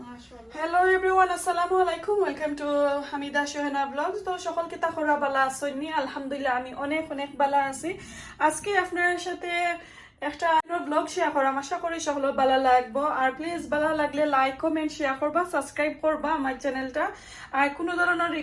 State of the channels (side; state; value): both; identical; correlation 1.00